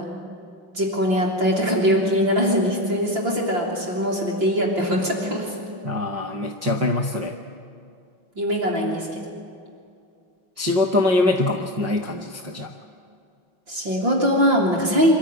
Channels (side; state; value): left; late; 5.8 ms